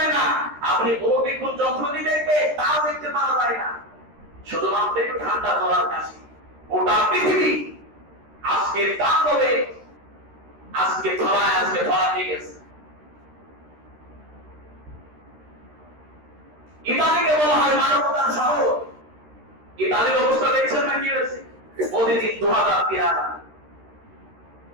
না, আপনি অভিজ্ঞান যন্ত্র দিয়ে দেখবে তাও দেখতে পাওয়া যায় না, শুধুমাত্র একটু ঠান্ডা জলার কাশি। গোটা পৃথিবী আজকে তাণ্ডবে, আজকে ধরা দিয়ে গেছে। ইতালিকে বলা হয় মানবতার শহর। ইতালির অবস্থা দেখছেন না কি হয়েছে? প্রতিদিন 2000-3000।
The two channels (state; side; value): late; left; 13 ms